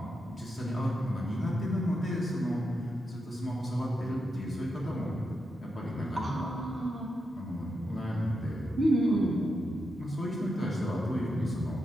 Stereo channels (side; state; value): both; normal; correlation 0.85